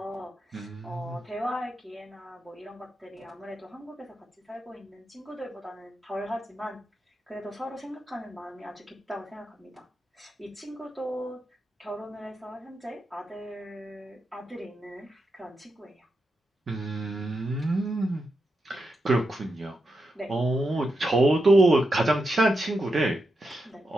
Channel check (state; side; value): normal; both; correlation 0.86